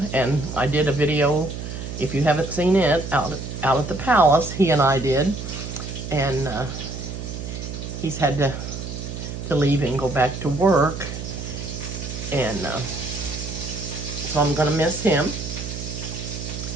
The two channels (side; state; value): right; noise; hum, 7 dB below the sound